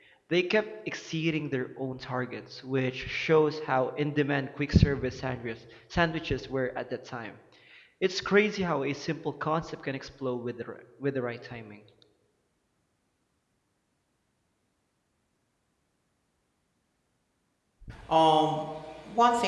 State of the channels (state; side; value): identical; both; correlation 1.00